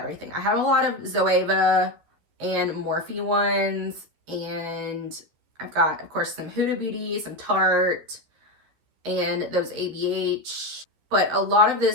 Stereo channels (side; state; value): left; late; 13 ms